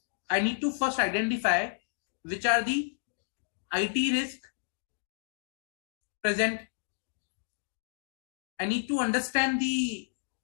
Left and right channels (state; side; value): silent; right; digital silence